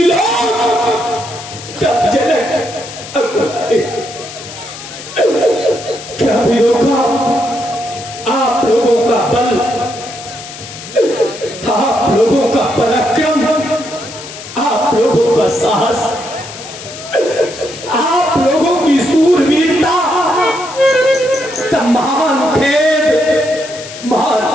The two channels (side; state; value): left; noise; hiss, 13 dB below the sound